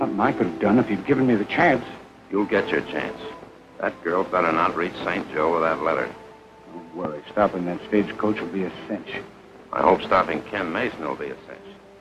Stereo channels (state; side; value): identical; both; correlation 1.00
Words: I could have done if you'd given me the chance. You'll get your chance. That girl better not reach St. Joe with that letter. Don't worry. Stopping that stagecoach will be a cinch. I hope stopping Ken Mason will be a cinch.